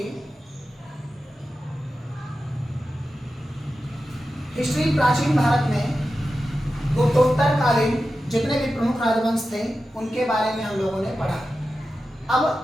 हिस्ट्री प्राचीन भारत में गुप्तोत्तर कालीन जितने भी प्रमुख राजवंश थे उनके बारे में हम लोगों ने पढ़ा। अब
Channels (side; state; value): both; normal; correlation 0.92